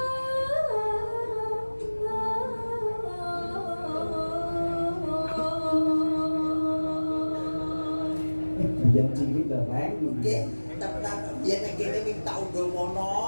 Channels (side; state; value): both; inverted; correlation -1.00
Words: Biyen cilik lho rek. Nggih, tenan biyen nek kene minta undang